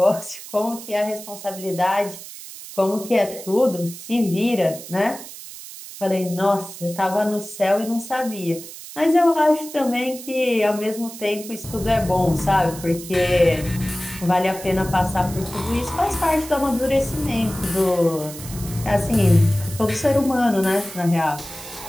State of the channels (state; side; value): noise; right; hiss, 14 dB below the sound